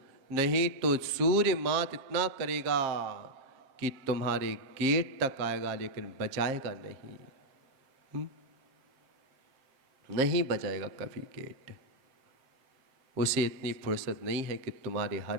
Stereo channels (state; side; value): late; left; 7.4 ms